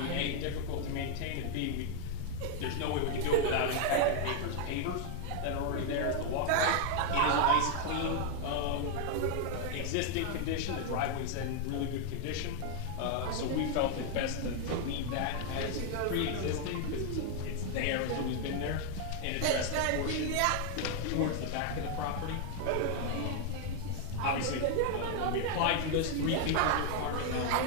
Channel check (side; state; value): both; different; correlation 0.00